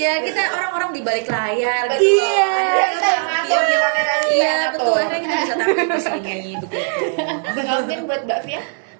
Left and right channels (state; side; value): silent; left; 58 dB below the other